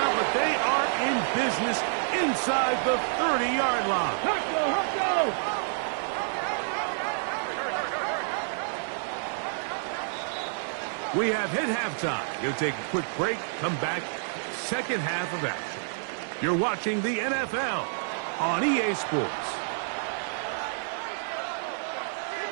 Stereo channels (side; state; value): left; silent; 59 dB below the other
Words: but they are in business inside the 30-yard line. Huckle. We have hit halftime. You'll take a quick break, come back, 2nd half of action. You're watching the NFL on EA Sports.